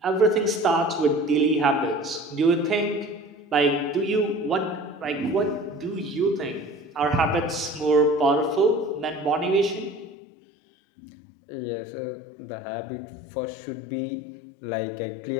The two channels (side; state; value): right; drops out; at 10.2 s